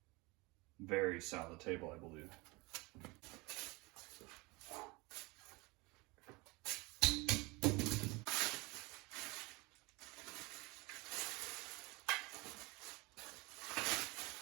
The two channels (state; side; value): quieter; left; 25.0 dB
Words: very solid table, I believe.